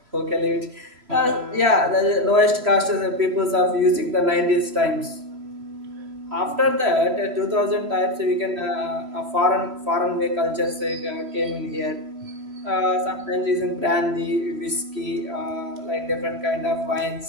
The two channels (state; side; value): late; left; 3.0 ms